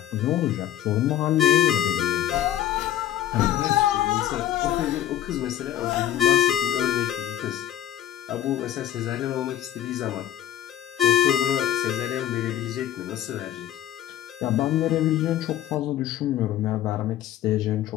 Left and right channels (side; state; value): right; quieter; 11.9 dB